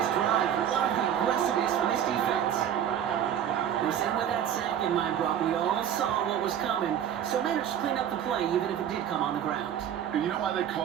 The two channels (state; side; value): quieter; left; 9.7 dB